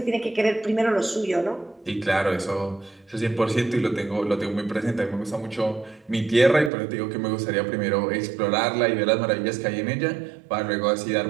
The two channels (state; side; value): drops out; left; at 6.7 s